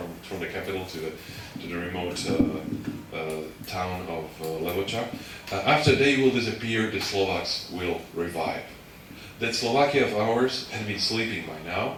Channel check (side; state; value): both; identical; correlation 1.00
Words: the capital to the remote town of Levoča. After they will disappear, the Slovaks will revive. That Slovakia of ours had been sleeping by